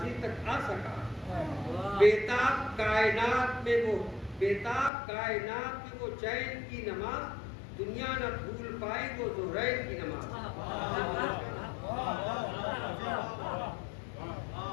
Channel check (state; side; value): drops out; right; at 4.9 s